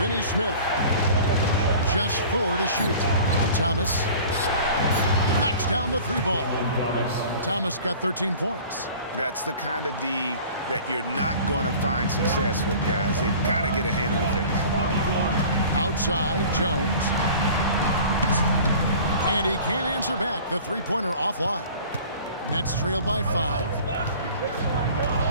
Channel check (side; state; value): both; inverted; correlation -0.44